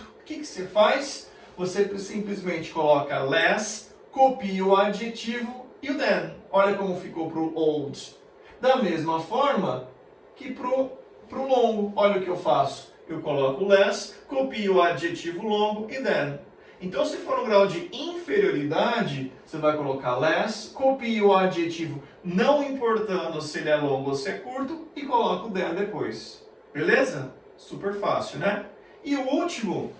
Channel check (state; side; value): identical; both; correlation 1.00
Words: O que você faz? Você simplesmente coloca less, copia o adjetivo e o then. Olha como ficou para o old. Da mesma forma que para o longo. Olha o que eu faço. Eu coloco less, copio o adjetivo longo e then. Então, se for no grau de inferioridade, você vai colocar less, copia o adjetivo, não importando se ele é longo ou se é curto, e coloca o then depois. Beleza? Super fácil, né? E o último